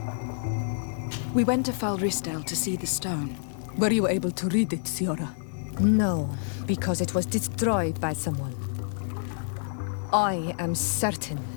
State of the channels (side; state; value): right; silent; digital silence